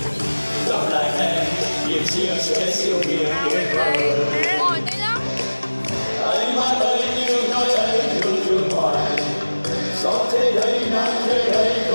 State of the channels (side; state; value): both; inverted; correlation -1.00